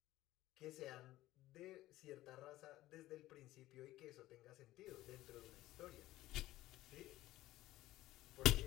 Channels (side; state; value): right; quieter; 16.0 dB